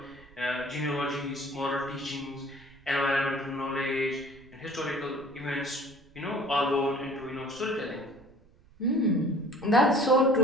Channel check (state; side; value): noise; right; rumble, 26 dB below the sound